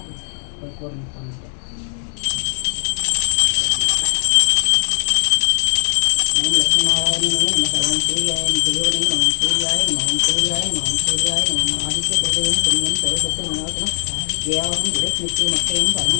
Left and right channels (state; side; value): silent; right; digital silence